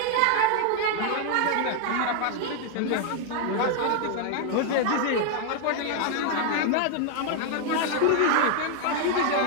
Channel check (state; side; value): different; both; correlation 0.00